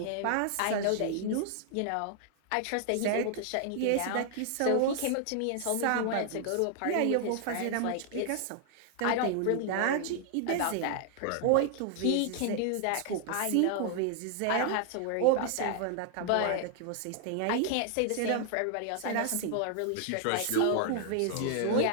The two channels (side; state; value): both; different; correlation 0.00